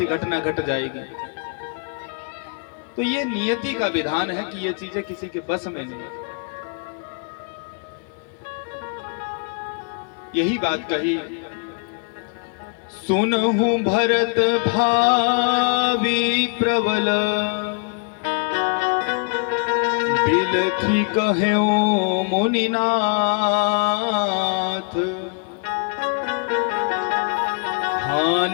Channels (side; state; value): right; quieter; 39.1 dB